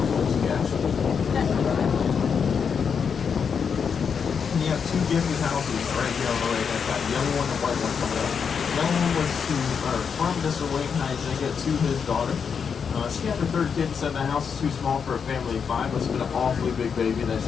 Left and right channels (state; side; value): quieter; right; 6.5 dB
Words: Coles cash. And you have two gifted houses right here on the right-hand side. The yellow one and the white one coming up. The yellow one was from Mr. Wayne Heisinger to his daughter. She had her third kid and said the house is too small for a family of 5, but it's been an awfully big baby that